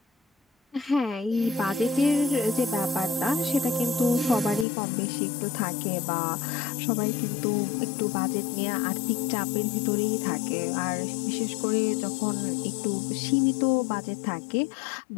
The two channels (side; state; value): right; drops out; at 4.7 s